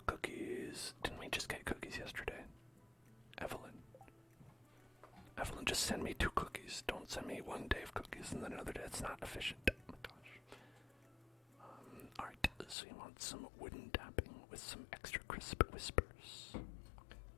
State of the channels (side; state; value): right; drops out; at 12.8 s